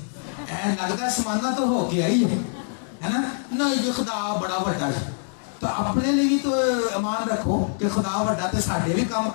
है समाना तो हो गया ही है ना। नहीं जी खुदा बड़ा बड़ा है, तो अपने लिए भी तो अमान रखो कि खुदा बड़ा तो साडे भी काम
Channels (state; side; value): silent; right; 62 dB below the other